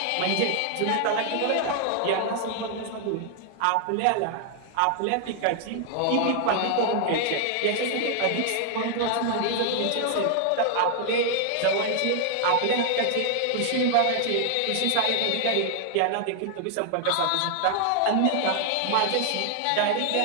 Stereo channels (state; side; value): different; both; correlation 0.00